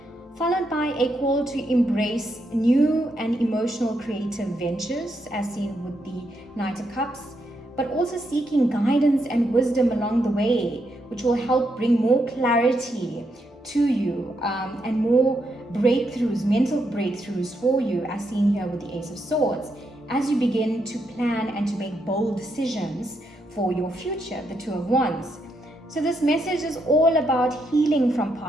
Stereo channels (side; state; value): both; normal; correlation 0.80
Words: followed by a call to embrace new and emotional creative ventures, as seen with the Knight of Cups, but also seeking guidance and wisdom along the way, which will help bring more clarity to you, and more breakthroughs, mental breakthroughs for you, as seen here with the Ace of Swords, as you begin to plan and to make bold decisions for your future, the Two of Wands. So this message is all about healing from